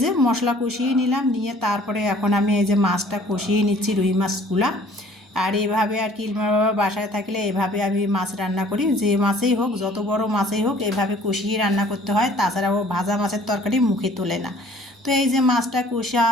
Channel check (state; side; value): normal; both; correlation 0.54